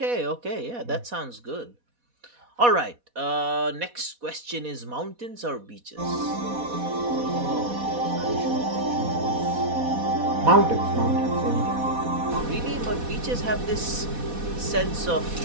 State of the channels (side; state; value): left; late; 4.1 ms